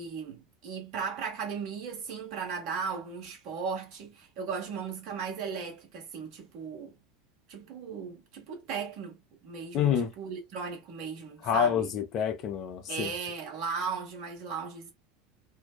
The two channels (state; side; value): normal; both; correlation 0.20